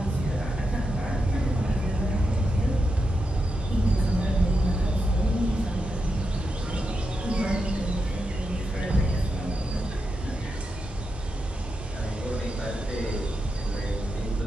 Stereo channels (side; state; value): both; normal; correlation 0.87